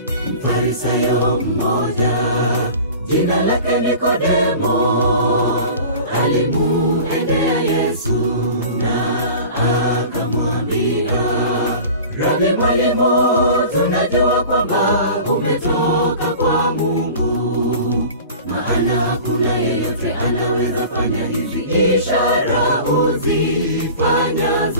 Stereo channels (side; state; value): both; inverted; correlation -0.40